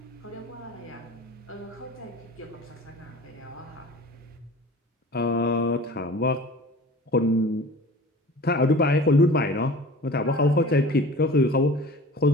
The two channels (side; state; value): both; normal; correlation 0.41